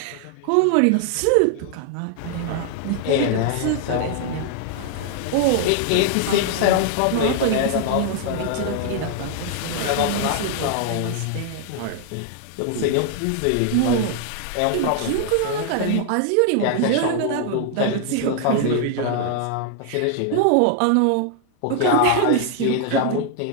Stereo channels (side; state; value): both; different; correlation 0.00